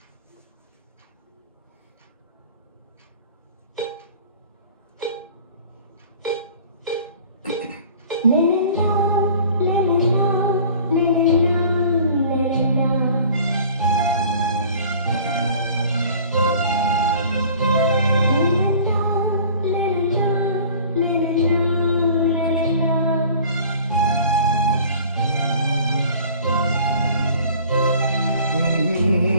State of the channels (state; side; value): inverted; both; correlation -0.47